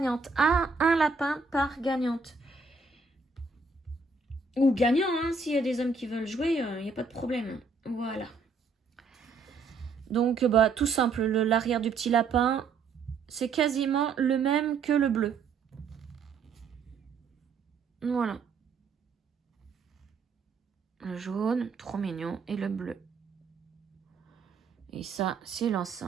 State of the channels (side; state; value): left; quieter; 4.6 dB